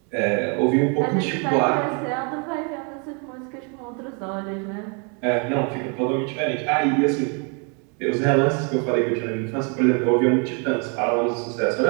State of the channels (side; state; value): left; quieter; 36.5 dB